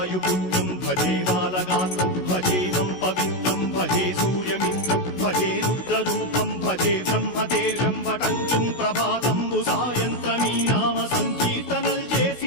భజే బాలగాత్రం భజేహం పవిత్రం భజే సూర్యమిత్రం భజే రుద్రరూపం భజే బ్రహ్మదేవం వటంచుం ప్రభాతంబు సాయంత్రమీ నామ సంకీర్తనల్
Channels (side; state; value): right; late; 16 ms